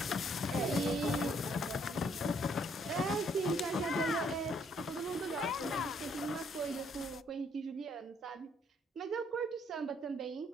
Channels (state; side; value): normal; both; correlation 0.67